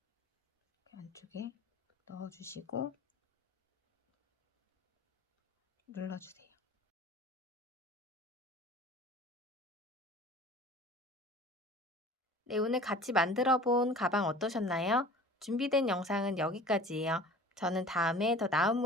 안쪽에 넣어주시고 눌러주세요. 네, 오늘 같이 만들어 본 가방 어떠셨나요? 준비된 영상은 여기까지예요. 저는 다음에 더 나은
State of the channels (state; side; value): normal; both; correlation 0.43